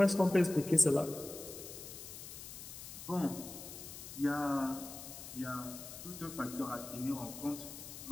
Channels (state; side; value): noise; left; hiss, 11 dB below the sound